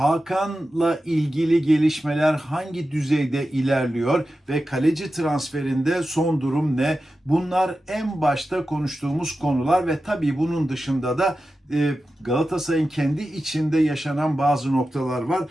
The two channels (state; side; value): normal; both; correlation 0.92